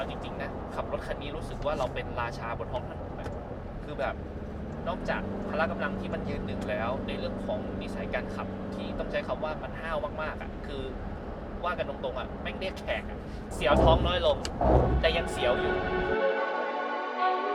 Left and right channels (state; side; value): identical; both; correlation 1.00